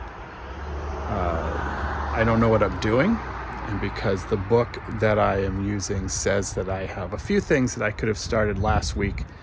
I don't know what I'm doing, and because the book that I am using says that I have a few things that I could have started last week,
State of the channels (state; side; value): identical; both; correlation 1.00